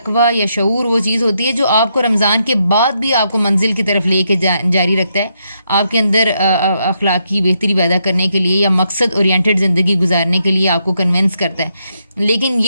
یا شعور وہ چیز ہوتی ہے جو آپ کو رمضان کے بعد بھی آپ کو منزل کی طرف لے کے جاری رکھتا ہے, آپ کے اندر اخلاقی بہتری پیدا کرنے کے لیے یا مقصد اورینٹڈ زندگی گزارنے کے لیے آپ کو کنونس کرتا ہے. لیکن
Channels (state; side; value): inverted; both; correlation -0.79